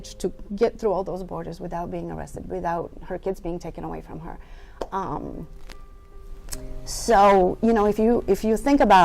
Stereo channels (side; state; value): both; identical; correlation 1.00